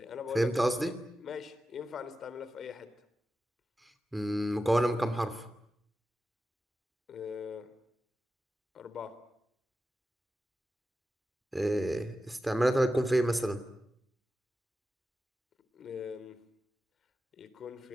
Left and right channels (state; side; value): normal; both; correlation 0.92